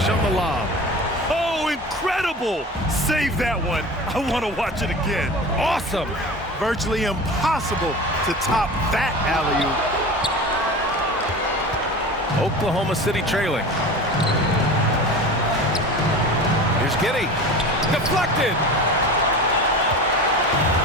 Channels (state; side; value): normal; both; correlation 0.34